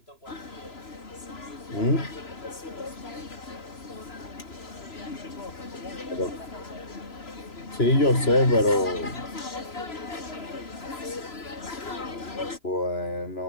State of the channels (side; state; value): right; late; 3.0 ms